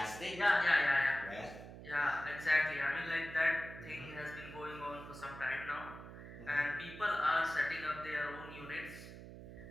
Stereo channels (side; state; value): right; noise; hum, 13 dB below the sound